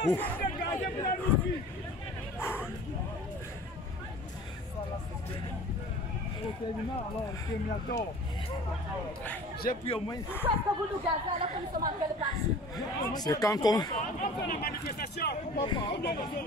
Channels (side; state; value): both; normal; correlation 0.43